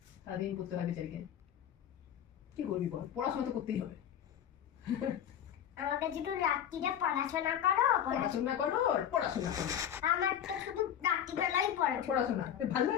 সারাদিন করতে হয় বেচারিকে। কি করবি বল, পড়াশোনা তো করতেই হবে। আমাকে শুধু রাত্রিরে পড়াশোনা করো, পড়াশোনা করো, পড়াশোনা করো। আমার তো শুধু রাত্রিবেলাই পড়াশোনা ভালো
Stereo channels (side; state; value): right; quieter; 9.7 dB